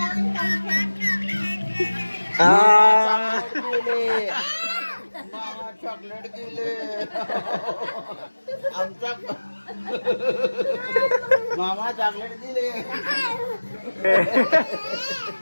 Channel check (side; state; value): both; inverted; correlation -1.00